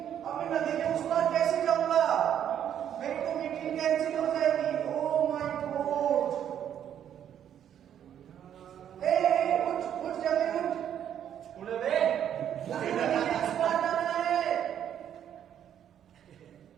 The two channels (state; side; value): quieter; left; 9.7 dB